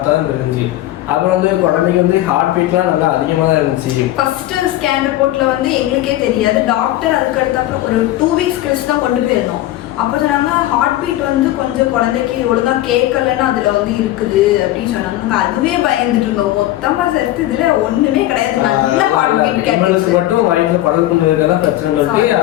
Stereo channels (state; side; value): quieter; right; 15.0 dB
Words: தான் தெரிஞ்சு. அப்புறம் வந்து குழந்தைக்கு வந்து ஹார்ட் பீட்லாம் நல்லா அதிகமாக தான் இருந்துச்சு. ஃபர்ஸ்ட் ஸ்கேன் ரிப்போர்ட்ல வந்து எங்களுக்கே தெரியாது. டாக்டர் அதுக்கு அடுத்த ஒரு 2 weeks கழிச்சு தான் கொண்டு போயிருந்தோம். அப்போ சொன்னாங்க ஹார்ட் பீட் வந்து கொஞ்சம் குழந்தைக்கு ஒழுங்கா கேட்கலன்னு அதுல வந்து இருக்குது அப்படின்னு சொன்னாங்க. அதுவே பயந்துட்டு இருந்தோம். மொத்தமா சேர்த்து இதுல ஒண்ணுமே கிடையாது, நல்ல ஹார்ட் பீட் கேட்டு மட்டும் வயிற்றுல குழந்தை கொண்டு இருக்கதான் பிரச்சனை சொல்லி